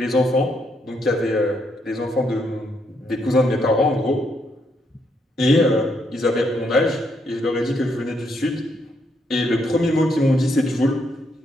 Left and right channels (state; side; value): normal; both; correlation 0.76